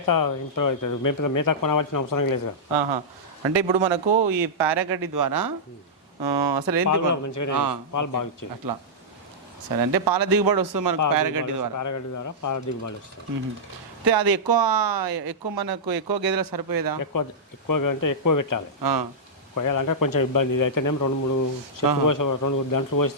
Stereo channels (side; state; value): both; normal; correlation -0.12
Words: ఇంప్రూవ్ అవుతుంది, మేత కొనవలసిన అవసరం లేదు. అంటే ఇప్పుడు మనకు ఈ పారాగడ్డి ద్వారా అసలు ఏంటి పాలు బాగా ఇచ్చేది అట్లా. సరే, అంటే పాల దిగుబడి వస్తుంది మనకు పారాగడ్డి ద్వారా. పారాగడ్డి ద్వారా పాల దిగుబడి వస్తుంది. అయితే అది ఎక్కువ మనకు ఎక్కువ గేదెలకు సరిపోయేదా? ఎక్కువగా అంటే ఎక్కువ పెట్టాలి, కొయ్యాలంటే కొంచెం ఇబ్బంది. ఇది అయితేనేమో 2-3 గంటలు